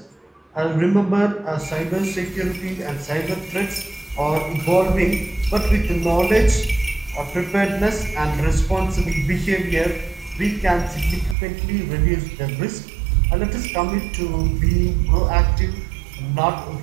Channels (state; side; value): drops out; left; at 11.4 s